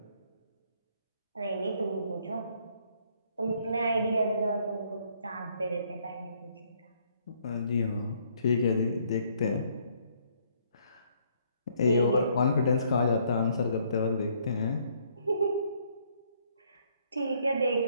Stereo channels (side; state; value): both; inverted; correlation -0.67